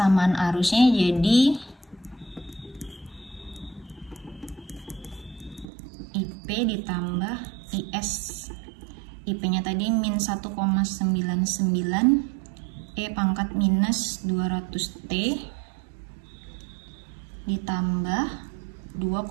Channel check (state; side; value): drops out; left; at 5.7 s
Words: arusnya jadi IP ditambah IS. IP-nya tadi min 1,99, E pangkat minus 200T ditambah